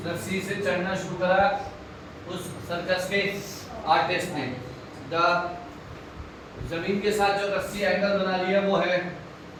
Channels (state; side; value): identical; both; correlation 1.00